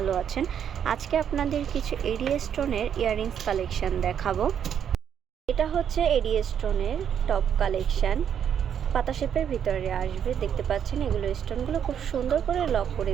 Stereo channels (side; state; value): left; quieter; 8.6 dB